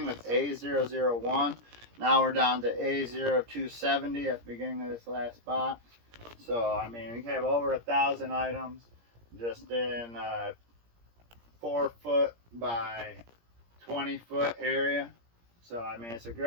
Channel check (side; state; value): left; late; 17 ms